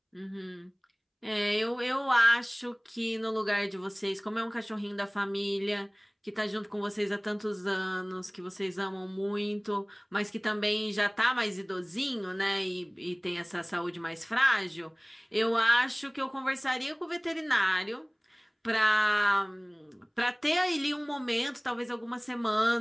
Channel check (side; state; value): both; identical; correlation 1.00